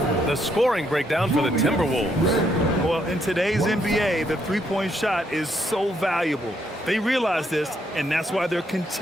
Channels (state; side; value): normal; both; correlation 0.74